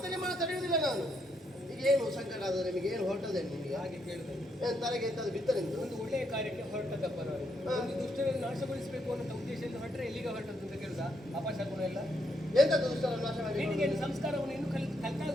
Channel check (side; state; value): both; normal; correlation 0.76